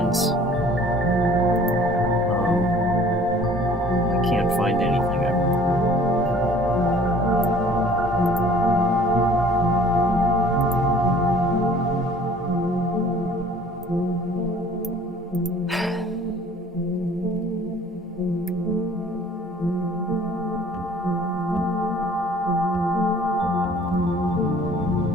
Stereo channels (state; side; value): normal; both; correlation 0.52